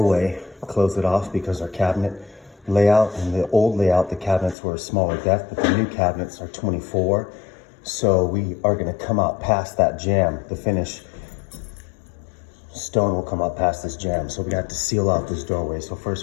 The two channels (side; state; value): right; drops out; at 4.5 s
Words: close it off, because our cabinet layout, in the old layout, the cabinets were a smaller depth, but the new cabinets are 24. So we are gonna come out past that jamb. The finish stone will come out past this jamb. So we have to seal off this doorway. So